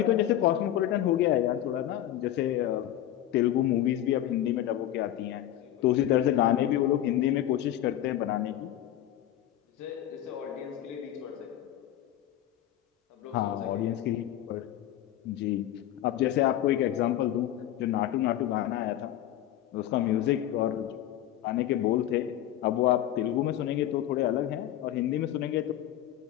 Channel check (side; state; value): right; quieter; 12.4 dB